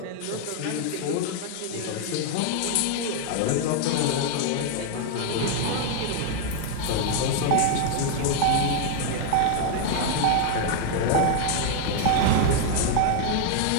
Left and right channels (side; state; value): both; different; correlation 0.00